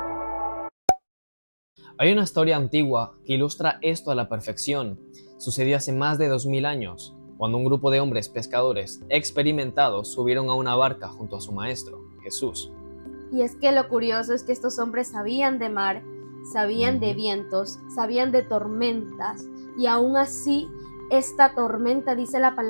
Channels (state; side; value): inverted; both; correlation -1.00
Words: Hay una historia antigua que ilustra esto a la perfección. Sucedió hace más de 2000 años, cuando un grupo de hombres pescadores experimentados subieron a una barca junto a su maestro, Jesús. Y es que lo curioso es que estos hombres sabían de mar, sabían de Ujú. vientos, sabían de tormentas, y aún así esta tormenta, dice la